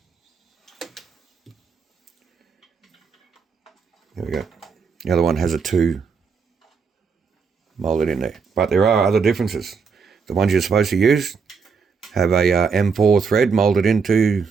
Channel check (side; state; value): left; quieter; 5.5 dB